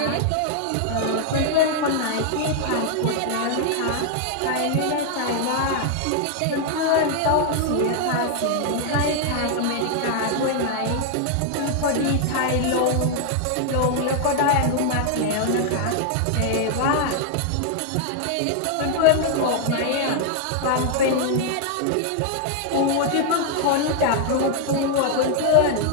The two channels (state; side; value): different; both; correlation 0.00